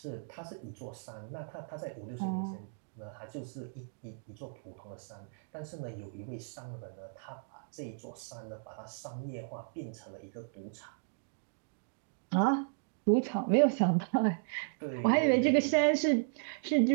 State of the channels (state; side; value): silent; left; digital silence